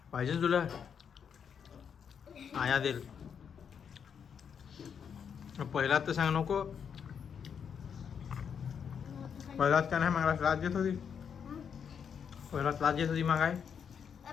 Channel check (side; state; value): right; quieter; 7.3 dB